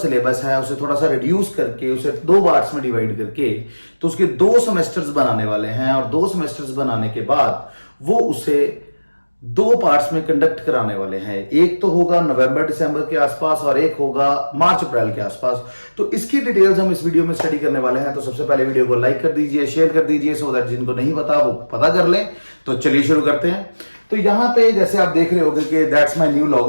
है उसे थोड़ा सा रिड्यूस करके उसे 2 पार्ट्स में डिवाइड करके तो उसके 2 सेमेस्टर्स बनाने वाले हैं। और 2 सेमेस्टर्स बनाने के बाद वो उसे 2 पार्ट्स में कंडक्ट कराने वाले हैं। एक तो होगा नवंबर दिसंबर के आसपास और एक होगा मार्च अप्रैल के आसपास। तो इसकी डिटेल्स हम इस वीडियो में स्टडी करने वाले हैं। तो सबसे पहले वीडियो को लाइक कर दीजिए, शेयर कर दीजिए, सो दैट जिनको नहीं पता वो पता कर लें। तो चलिए शुरू करते हैं। तो यहाँ पे जैसे आप देख रहे होंगे कि दैट्स माय न्यू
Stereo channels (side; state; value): both; inverted; correlation -1.00